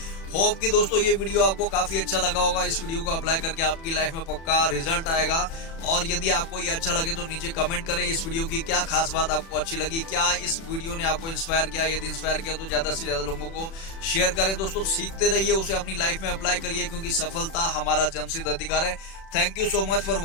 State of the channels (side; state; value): right; late; 36 ms